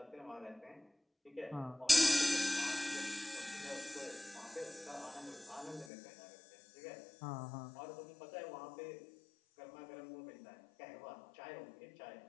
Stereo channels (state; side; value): drops out; right; at 5.9 s